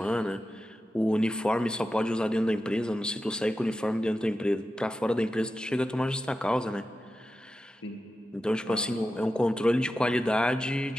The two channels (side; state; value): both; normal; correlation 0.92